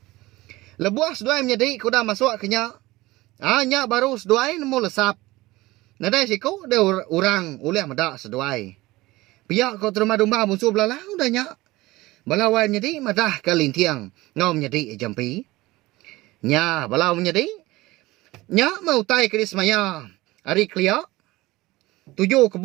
Lebuah S2 menjadi kuda masuk kenya. Nya baru seduai nemu lesap. Nadai siku dia orang uleh madak seduai. Pihak kau terima Dumbang bunsu belalang udah nyak. Balawai menjadi madah ke lintiang. Ngau menjadi jampi. Nya balau menjadi. Nyak mau tai ke dismaya. Hari kelia. 7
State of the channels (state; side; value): quieter; left; 19.5 dB